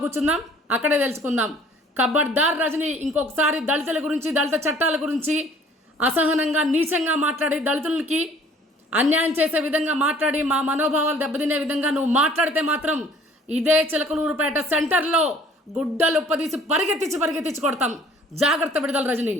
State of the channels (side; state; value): both; normal; correlation 0.54